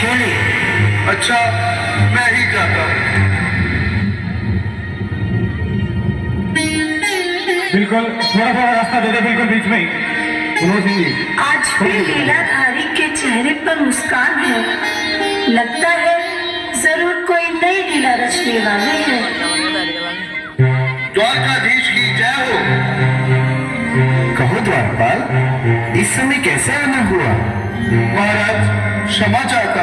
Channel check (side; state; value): both; identical; correlation 1.00